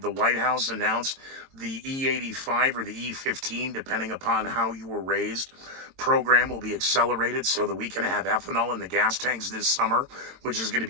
the White House announced the E85 or the E15, depending upon how you were raised, program will be accelerated so that we can have ethanol in the gas tanks this summer, which is going to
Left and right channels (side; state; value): left; late; 22 ms